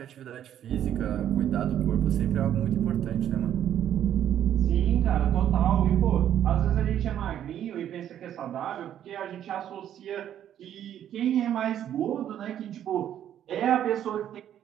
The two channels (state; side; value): quieter; left; 10.5 dB